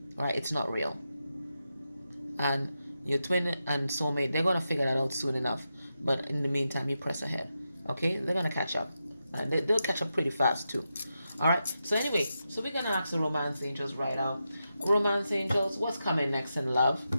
All right, it's not real. And your twin and soulmate, they're gonna figure that out soon enough. But in the meantime, you press ahead. Okay, they're gonna catch up, and they'll catch up pretty fast too. All right. So anyway, so we're gonna ask the romance angels right out. Romance angels, what's coming next in love?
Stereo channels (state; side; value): inverted; both; correlation -0.88